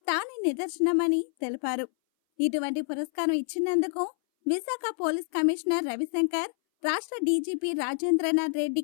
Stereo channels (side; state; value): right; silent; 58 dB below the other